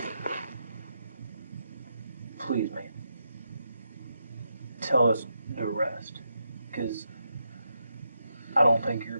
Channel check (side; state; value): both; inverted; correlation -0.84